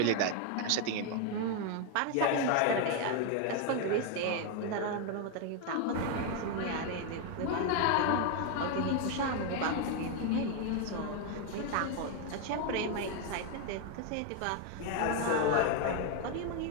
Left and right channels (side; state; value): both; different; correlation 0.01